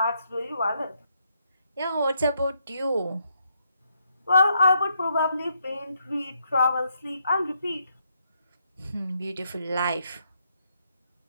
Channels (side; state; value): both; inverted; correlation -0.77